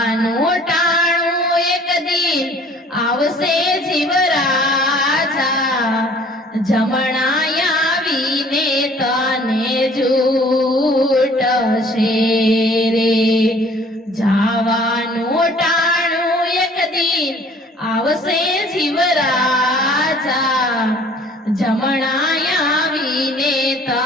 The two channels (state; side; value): normal; both; correlation 0.54